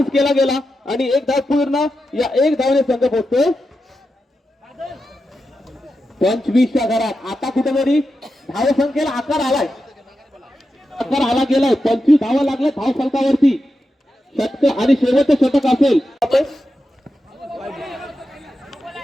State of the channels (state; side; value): normal; both; correlation 0.89